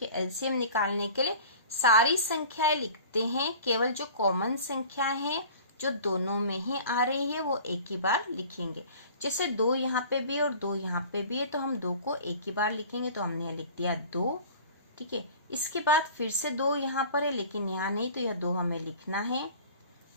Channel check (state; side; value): inverted; both; correlation -0.43